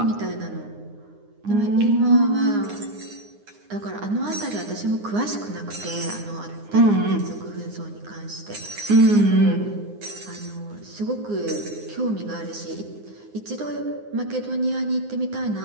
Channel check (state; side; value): late; left; 9.7 ms